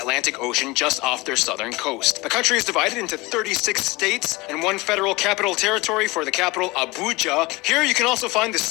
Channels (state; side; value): quieter; right; 22.7 dB